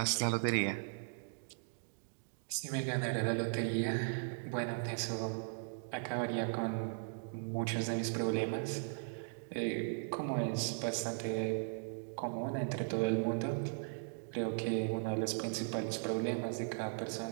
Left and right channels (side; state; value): left; silent; digital silence